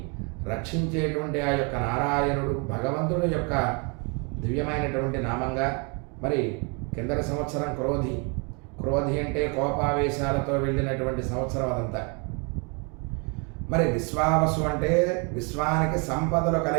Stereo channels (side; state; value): left; quieter; 34.0 dB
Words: రక్షించేటువంటి ఆ యొక్క నారాయణుడు భగవంతుడు యొక్క దివ్యమైనటువంటి నామంగా. మరి కిందటి సంవత్సరం క్రోధి అంటే కోపావేశాలతో వెళ్ళినటువంటి సంవత్సరం అదంతా. మరి విశ్వావసు అంటే విశ్వానికి సంపదలు